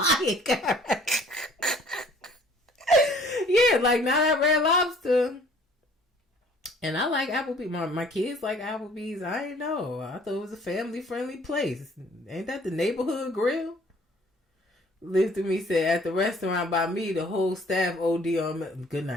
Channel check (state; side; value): normal; both; correlation 0.55